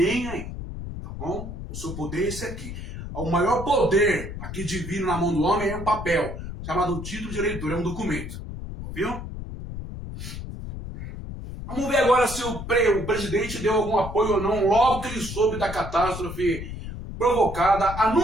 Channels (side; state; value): left; noise; rumble, 8 dB below the sound